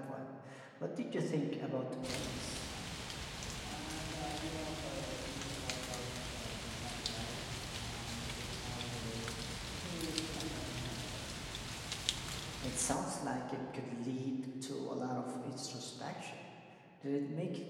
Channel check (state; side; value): identical; both; correlation 1.00